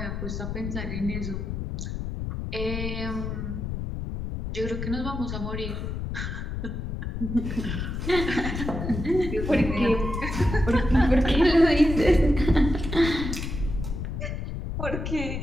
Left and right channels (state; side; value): noise; left; rumble, 4 dB below the sound